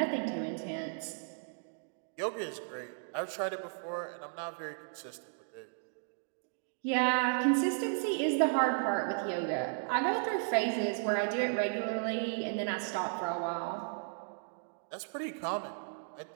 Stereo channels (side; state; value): left; silent; digital silence